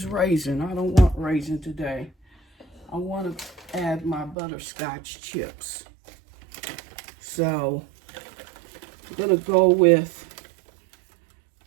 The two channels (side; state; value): left; drops out; at 4.4 s